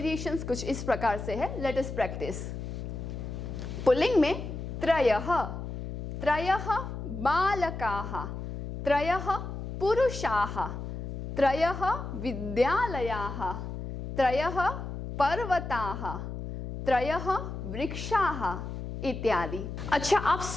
कुछ इस प्रकार से है, लेट अस प्रैक्टिस। पुल्लिंग में त्रयः, त्रयः बालकाः, त्रयः पुरुषाः, त्रयः विद्यालयाः, त्रयः पर्वताः, त्रयः वृक्षाः इत्यादि। अच्छा, आप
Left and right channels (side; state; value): left; noise; hum, 7 dB below the sound